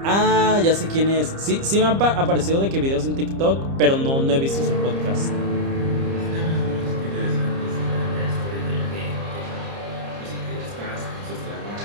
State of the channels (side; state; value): left; late; 30 ms